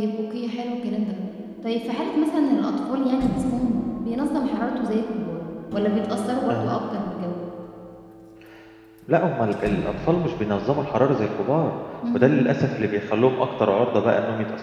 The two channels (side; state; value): both; identical; correlation 1.00